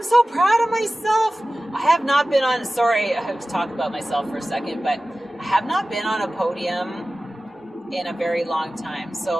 so proud of myself. I have not been on, I have to talk about myself for a second, but I have not been on a podium in a very long time.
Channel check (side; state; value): both; normal; correlation 0.96